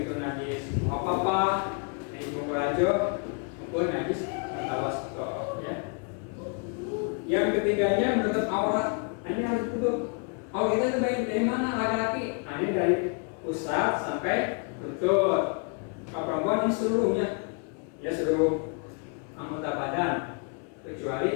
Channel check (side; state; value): right; quieter; 38.9 dB